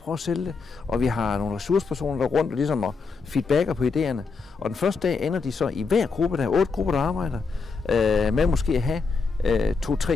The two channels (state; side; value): quieter; right; 4.6 dB